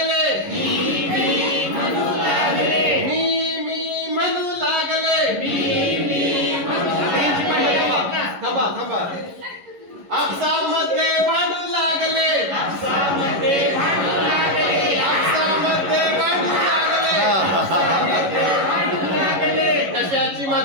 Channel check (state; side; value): late; left; 11 ms